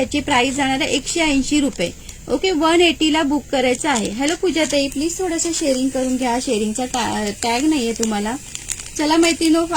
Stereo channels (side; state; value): both; identical; correlation 1.00